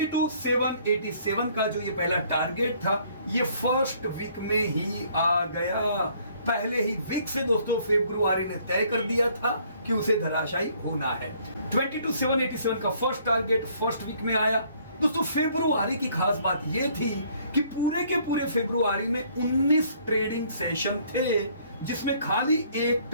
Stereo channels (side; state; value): both; inverted; correlation -0.62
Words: का जो ये पहला टारगेट था, ये फर्स्ट वीक में ही आ गया। पहले ही वीक से दोस्तों फरवरी ने तय कर दिया था कि उसे धराशायी होना है। 22,787 का फर्स्ट टारगेट फर्स्ट वीक में आया। दोस्तों फरवरी की खास बात यह थी कि पूरे के पूरे फरवरी में 19 ट्रेडिंग सेशन थे, जिसमें खाली एक